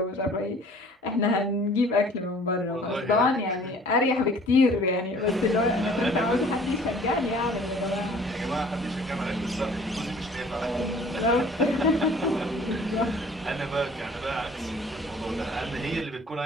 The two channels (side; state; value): both; normal; correlation 0.51